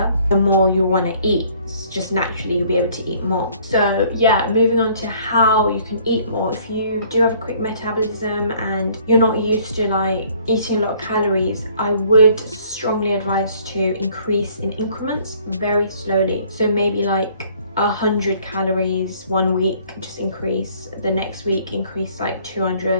the more you'll want to eat. Just naturally you'll be able to eat more. So yeah, moving on to how you can eat more. If you do have a quick metabolism and you're not used to like eating a lot of calories, I would strongly advise to increase in increments very slowly. So maybe like 100 calories one week, just increase. The next week increase like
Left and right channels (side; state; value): both; inverted; correlation -0.59